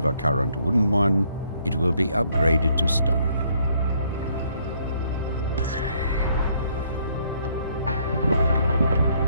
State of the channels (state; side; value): inverted; both; correlation -0.68